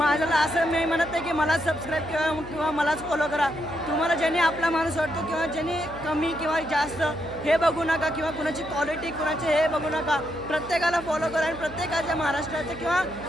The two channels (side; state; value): right; noise; hum, 16 dB below the sound